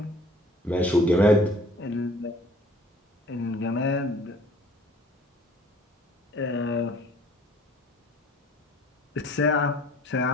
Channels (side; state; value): both; normal; correlation 0.53